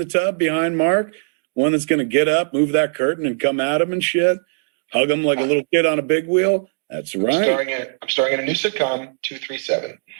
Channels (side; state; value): left; silent; digital silence